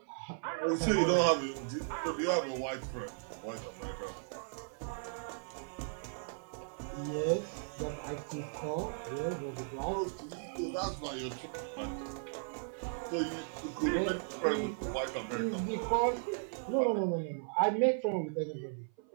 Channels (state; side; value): silent; left; 54 dB below the other